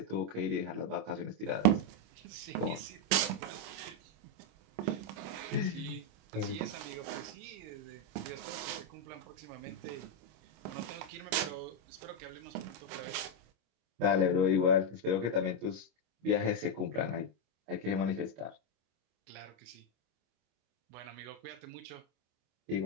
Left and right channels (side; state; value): left; late; 25 ms